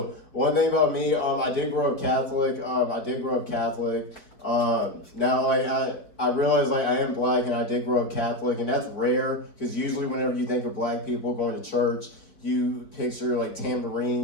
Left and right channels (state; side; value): late; right; 4.4 ms